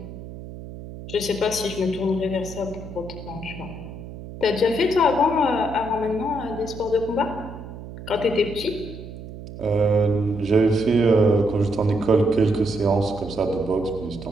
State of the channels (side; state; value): right; noise; hum, 12 dB below the sound